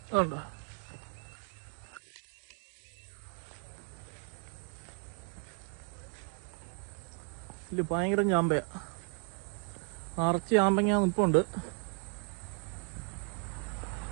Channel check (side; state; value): left; quieter; 37.8 dB